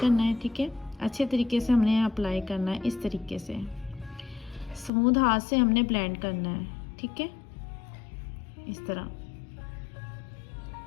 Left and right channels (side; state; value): right; drops out; at 4.9 s